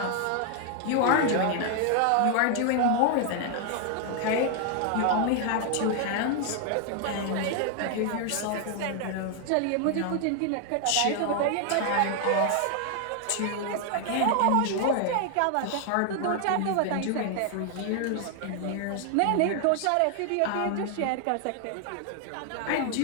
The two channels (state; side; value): different; both; correlation 0.00